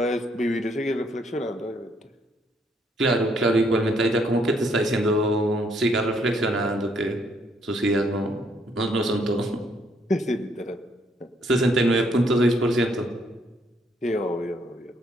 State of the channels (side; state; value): both; normal; correlation 0.69